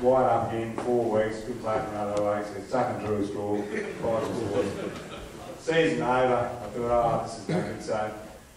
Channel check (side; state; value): both; identical; correlation 1.00